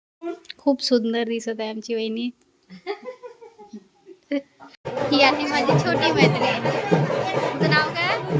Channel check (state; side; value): identical; both; correlation 1.00